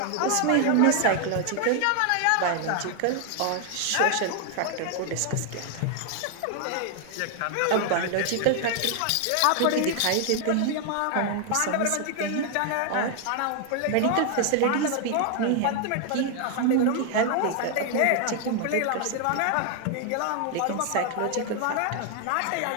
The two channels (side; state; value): both; different; correlation 0.00